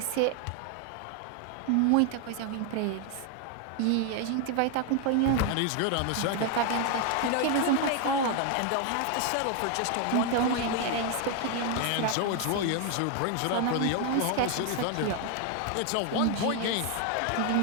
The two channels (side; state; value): both; different; correlation 0.01